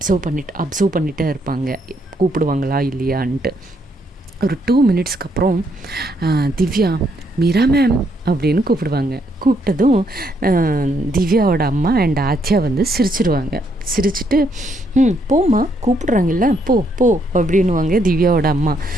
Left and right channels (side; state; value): both; normal; correlation 0.73